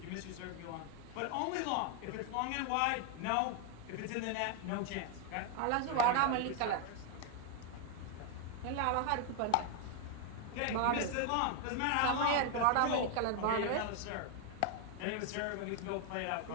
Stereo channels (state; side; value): different; both; correlation 0.00